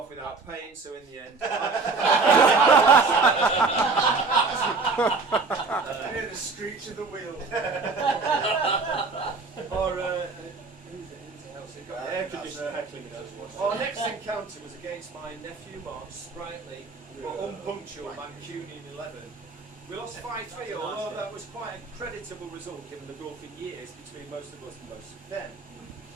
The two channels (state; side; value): quieter; left; 4.1 dB